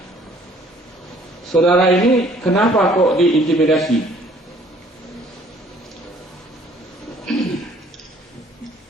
Saudara ini kenapa kok diintimidasi?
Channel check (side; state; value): both; normal; correlation 0.58